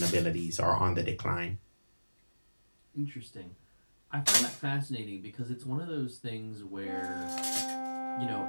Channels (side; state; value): both; inverted; correlation -1.00